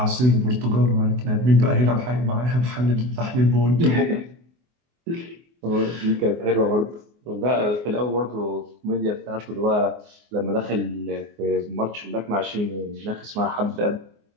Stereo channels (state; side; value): late; left; 24 ms